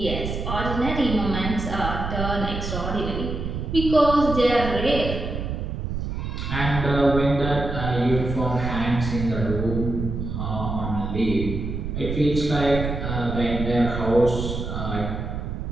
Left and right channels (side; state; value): right; noise; rumble, 4 dB below the sound